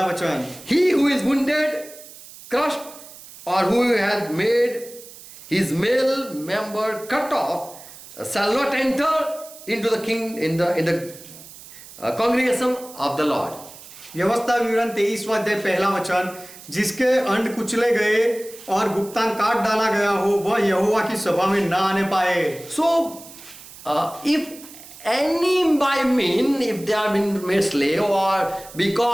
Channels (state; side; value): noise; right; hiss, 18 dB below the sound